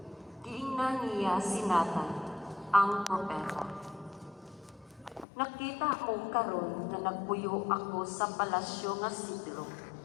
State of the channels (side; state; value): right; drops out; at 5.2 s